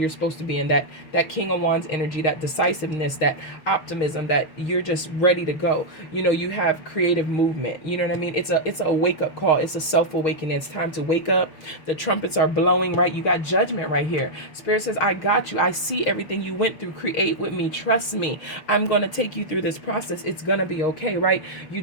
supposed to be in, that King of Wands energy, that decisiveness, that optimism, that you're just ready to go. You know, you have creative movement. You know what I mean? It's a wake-up call. It's a self-awakening. It's time to wake up. The trumpets are blowing, right? You got judgment right here. Spirit says, I got you. I see everything you went through. Create with me. Trust me. I'm going to take you through this process. It's going to be okay, right? You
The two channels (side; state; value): right; late; 6.4 ms